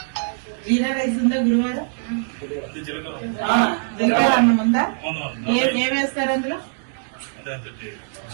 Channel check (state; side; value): silent; left; digital silence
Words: జీరా రైస్ ఉందా గురువారం? జీలకర్ర అన్నం ఉందా? ఏం వేస్తారు అందులో?